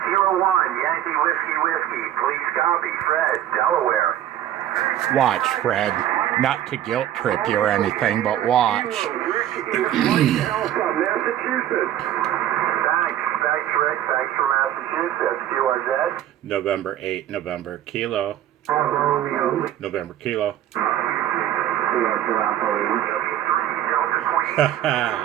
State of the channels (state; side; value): quieter; left; 12.0 dB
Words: Kilo 1, Yankee Whiskey. Please copy. Fred, Delaware. Watch, Fred. Not to guilt trip you or anything, but watch. Alpha, Massachusetts. Thanks, Rick. Thanks for Massachusetts. QRZ. November 8, November Kilo. November Kilo.